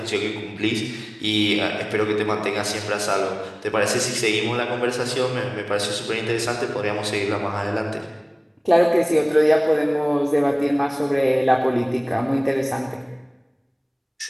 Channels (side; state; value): both; identical; correlation 1.00